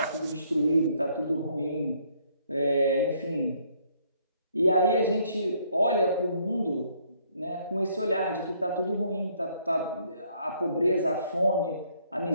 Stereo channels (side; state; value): both; inverted; correlation -0.67